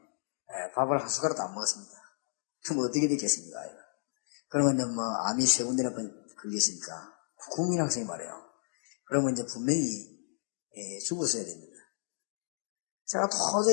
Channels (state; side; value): silent; right; 55 dB below the other